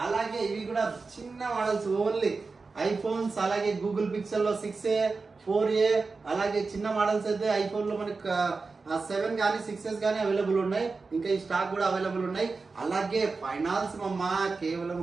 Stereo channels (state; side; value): quieter; left; 4.2 dB